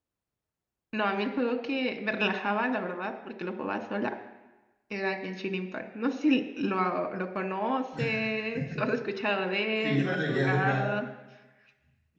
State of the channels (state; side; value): identical; both; correlation 1.00